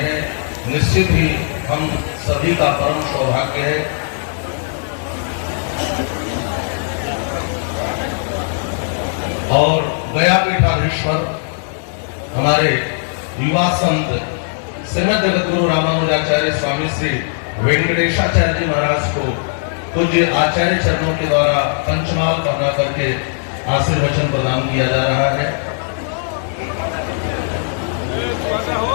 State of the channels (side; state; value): right; silent; digital silence